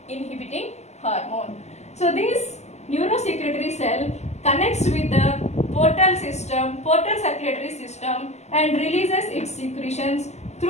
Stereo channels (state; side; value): late; right; 0.33 ms